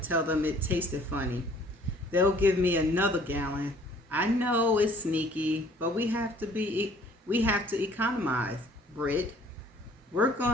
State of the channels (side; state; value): both; normal; correlation 0.56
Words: tell them it tasted funny. They'll give me another gallon. I know it's sneaky, but we have to economize, Britt. Work